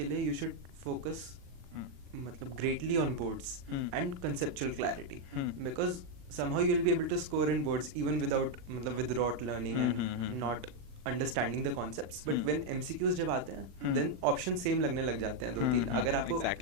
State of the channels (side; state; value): left; late; 39 ms